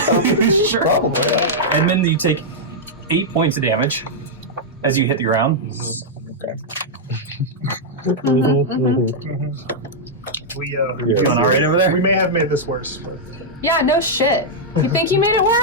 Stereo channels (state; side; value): normal; both; correlation -0.06